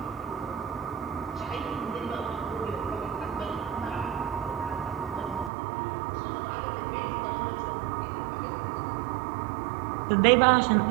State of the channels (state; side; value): drops out; left; at 5.5 s